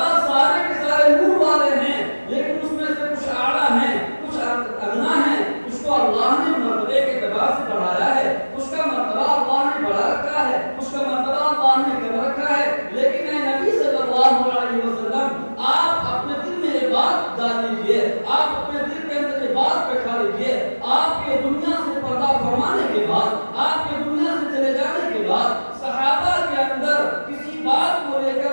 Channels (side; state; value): both; inverted; correlation -1.00